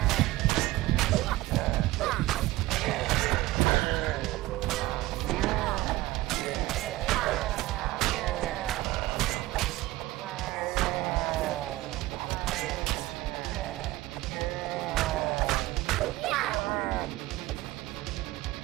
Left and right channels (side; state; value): left; quieter; 17.9 dB